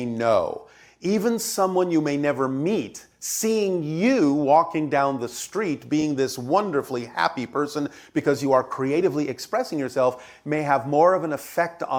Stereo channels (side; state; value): both; identical; correlation 1.00